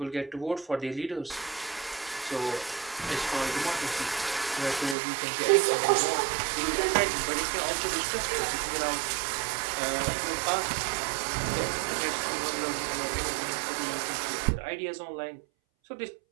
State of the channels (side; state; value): left; drops out; at 5.0 s